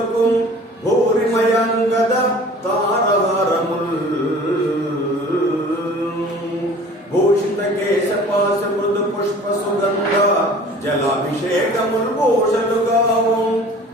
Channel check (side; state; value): both; normal; correlation 0.46